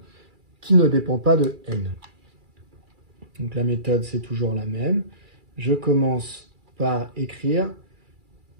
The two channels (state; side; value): late; left; 2.3 ms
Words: qui ne dépend pas de n. Donc la méthode c'est toujours la même. Je commence par écrire